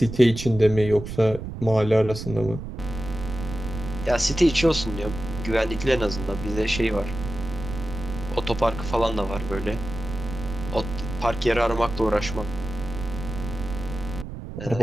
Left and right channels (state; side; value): noise; right; rumble, 8 dB below the sound